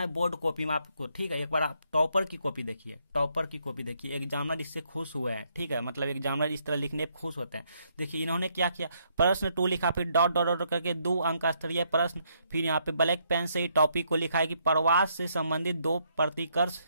है बोर्ड कॉपी में आपको, ठीक है। एक बार आप टॉपर की कॉपी देखिए, टॉपर की कॉपी देखिए, एग्जामिनर इससे खुश हुए हैं, ठीक है, मतलब एग्जामिनर इस तरह लिखने पर खुश होते हैं। देखिए इन्होंने क्या किया, प्रश्न 2 लिखा, फिर डॉट डॉट डॉट करके 2 अंक का स्तरीय प्रश्न, फिर यहाँ पे ब्लैक पेन से ही टॉपिक को लिखा है कि प्रवास से संबंधित 2 प्रतिकर्ष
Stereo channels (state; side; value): inverted; both; correlation -0.73